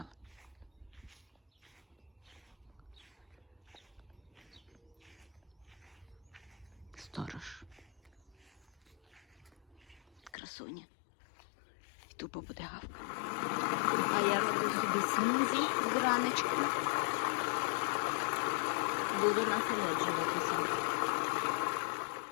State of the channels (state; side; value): drops out; right; at 10.3 s